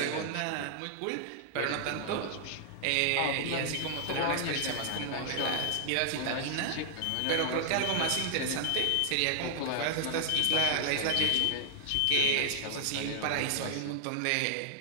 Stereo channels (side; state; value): both; different; correlation 0.00